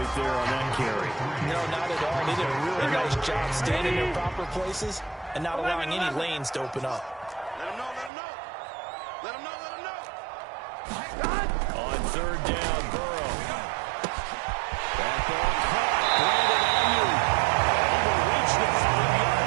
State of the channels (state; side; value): drops out; left; at 8.1 s